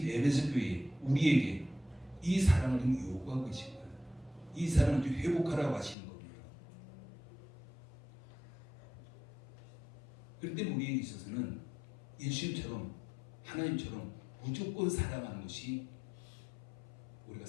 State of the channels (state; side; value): drops out; right; at 6.0 s